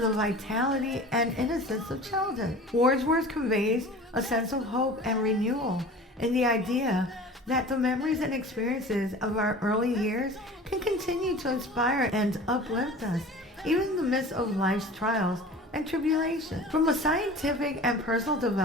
vitality and innocence of childhood. Wordsworth conveys a sense of hope and renewal in the idea that the memories and experiences of our early years can continue to inspire and uplift us, even in the midst of life's trials and tribulations. From a scientific and personal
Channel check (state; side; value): normal; both; correlation 0.40